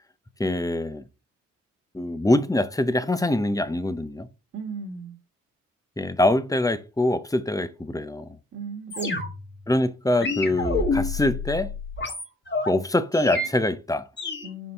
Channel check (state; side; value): normal; both; correlation 0.71